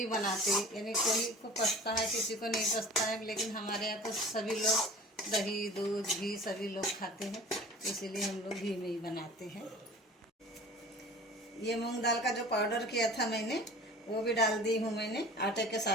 बनाते, यानी कोई को पसता है किसी को नहीं पसता है, लेकिन हमारे यहाँ तो सभी लोग दही दूध घी सभी लोग खाते हैं, इसीलिए हम लोग घी में ही बनाते हैं। ये मूंग दाल का जो पाउडर किया था मैंने, वो भी डाल दी हूँ मैंने आटे के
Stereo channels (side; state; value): both; normal; correlation 0.42